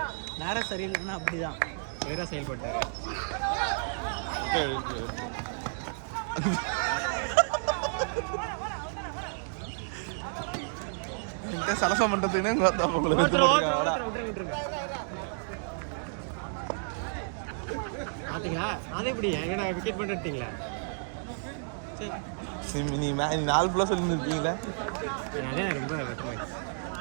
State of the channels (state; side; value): silent; left; digital silence